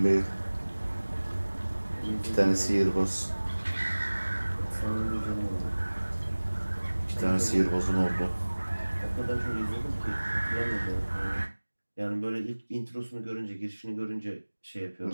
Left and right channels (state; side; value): inverted; both; correlation -1.00